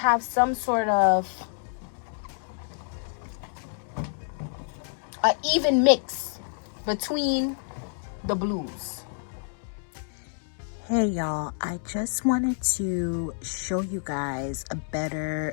some sort of an even mix between the blues. Hey y'all, I just wanted to show you guys a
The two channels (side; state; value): right; silent; digital silence